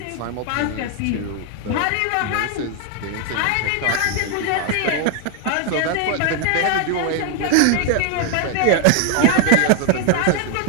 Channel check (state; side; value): different; both; correlation 0.01